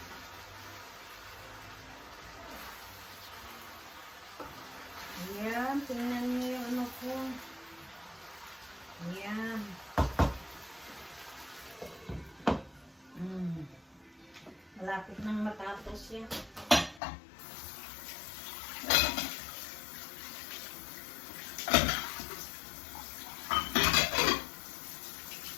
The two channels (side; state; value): right; drops out; at 17.0 s